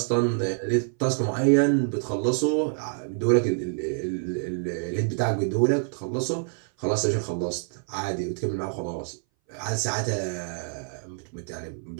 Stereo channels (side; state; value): left; silent; 59 dB below the other